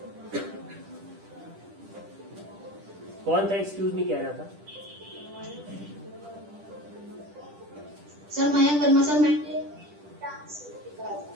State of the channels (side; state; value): left; late; 10 ms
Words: कौन था एक्सक्यूज मी कह रहा था? Sir, Mayank Verma, sir.